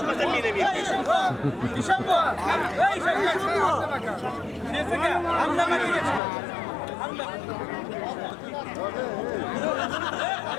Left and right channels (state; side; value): drops out; right; at 6.2 s